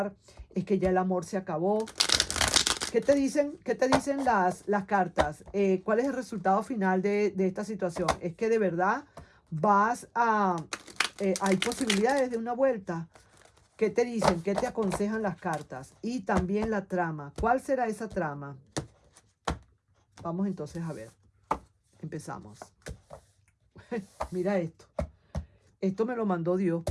¿Es que ya el amor se acabó? ¿Qué te dicen, las cartas? ¿Cuál es el resultado final de esta situación? ¿Es que de verdad hay posibilidades de una vuelta? ¿Qué te dicen? ¿Qué te aconsejan las cartas? Y también la trama. ¿Cuál será esa trama? Vamos entonces a ver. Empezamos. Mira esto. Esto me lo mandó Dios,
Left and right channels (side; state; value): both; identical; correlation 1.00